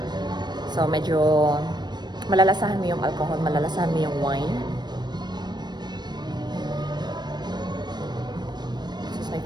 So medyo malalasahan mo yung alcohol, malalasahan mo yung wine. This is my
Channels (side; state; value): left; late; 0.21 ms